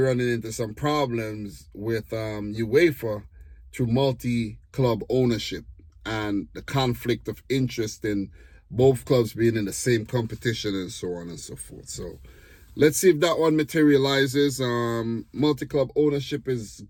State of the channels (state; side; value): identical; both; correlation 1.00